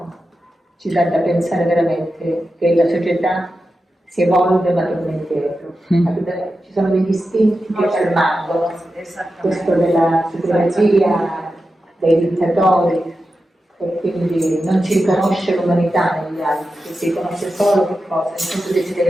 ci dà da pensare veramente che la società si evolve ma torna indietro. Ci sono degli istinti che ci rimangono, questo della supremazia, dei dittatori, e quindi non ci riconosce l'umanità negli altri, si riconosce solo che cosa? Il nostro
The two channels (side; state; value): both; normal; correlation 0.91